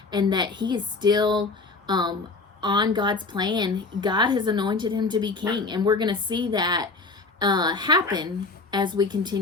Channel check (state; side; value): quieter; right; 3.9 dB